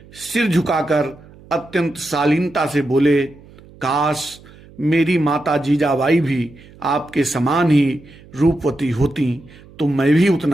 सिर झुकाकर अत्यंत शालीनता से बोले, काश मेरी माता जीजाबाई भी आपके समान ही रूपवती होती तो मैं भी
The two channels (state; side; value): noise; right; hum, 23 dB below the sound